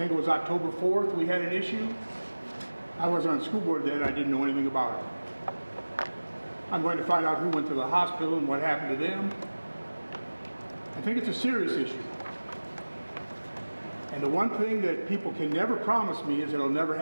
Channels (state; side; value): inverted; both; correlation -1.00